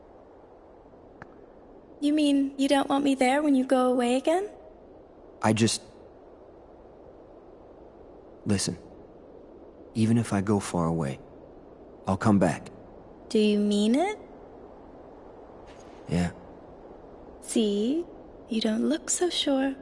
You mean you don't want me there when you go away again? Listen. Even if I go far away, I'll come back. Do you mean it? Yeah. See? You don't look so sure.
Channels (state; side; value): identical; both; correlation 1.00